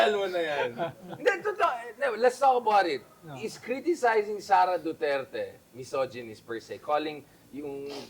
mo na yan? Hindi, totoo. No, let's talk about it. Is criticizing Sara Duterte misogynist per se, calling yung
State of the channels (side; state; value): both; identical; correlation 1.00